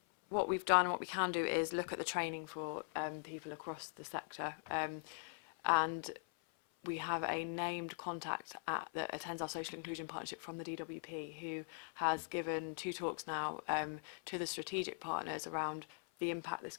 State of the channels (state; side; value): silent; right; 50 dB below the other